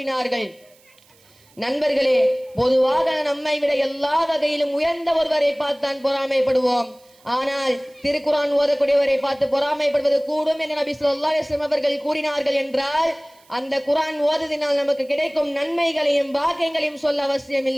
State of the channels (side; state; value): right; noise; hiss, 30 dB below the sound